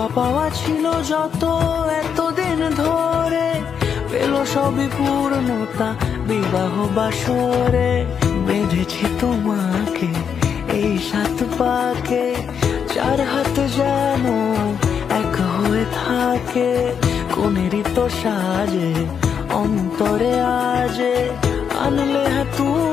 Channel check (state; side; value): quieter; right; 7.3 dB